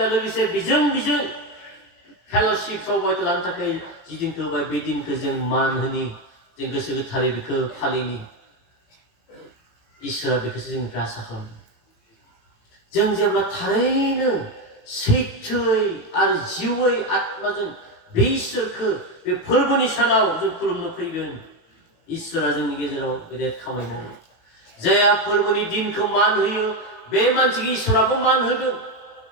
लोगोसे बेजों फेल'शिप सहभागिता लानो थाखाय जि दिनखौ होबाय बे दिनखौ जों मान होनि जों गोसो गोथारै बेखौ फालिनि इसोरा बेखौसो जोंनिफ्राय आसा खालामो जों जेब्ला थारैनो सैथोयै आरो जिउयै आत्माजों बे इसोरखौ बे फोरबोनि सानाव जों खुलुमनो फैगोन इसोरा जोंनि गेजेराव गेदेर खामानि मावो जायहा फोरबोनि दिनखौ मान होयो बे मानसिखौ इसोराबो मान होगोन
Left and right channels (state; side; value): late; right; 18 ms